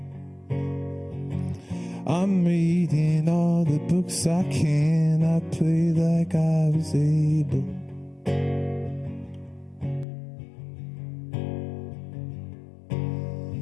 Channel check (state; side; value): drops out; right; at 10.1 s